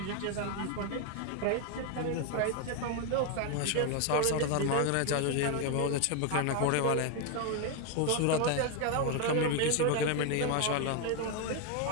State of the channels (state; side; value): different; both; correlation 0.01